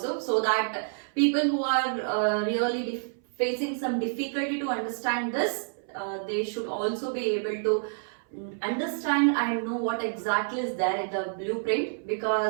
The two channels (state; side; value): silent; left; 59 dB below the other